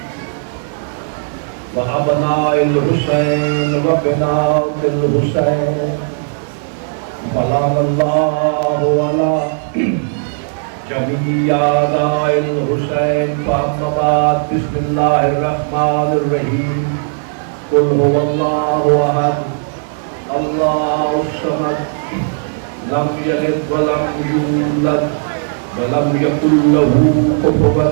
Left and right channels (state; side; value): silent; left; digital silence